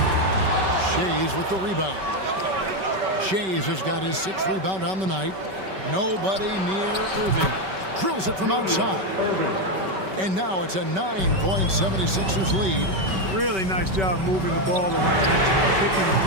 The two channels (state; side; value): late; left; 5.2 ms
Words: Shays with the rebound. Shays has got his 6th rebound on the night. Nobody near Irving. Drills it from outside. And now it's a 9-point 76ers lead. Really nice job moving the ball around that time, picking